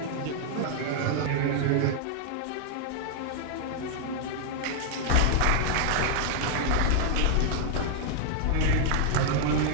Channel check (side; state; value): both; different; correlation 0.00